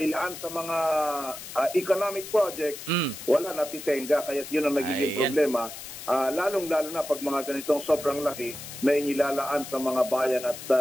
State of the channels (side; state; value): left; noise; hiss, 11 dB below the sound